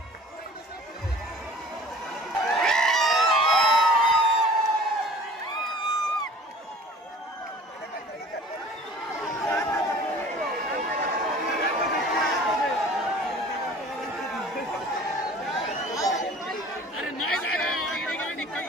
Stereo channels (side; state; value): both; normal; correlation 0.46